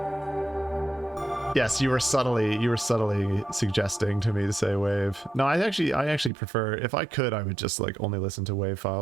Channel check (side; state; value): left; drops out; at 6.3 s